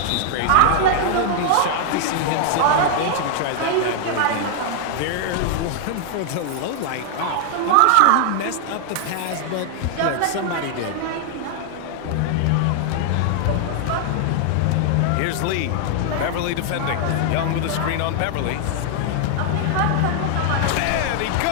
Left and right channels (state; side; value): different; both; correlation 0.00